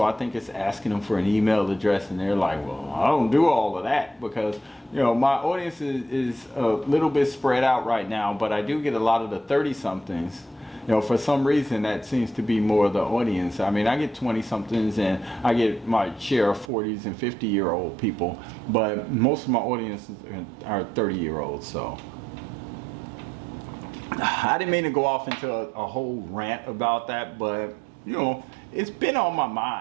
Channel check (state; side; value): drops out; left; at 16.7 s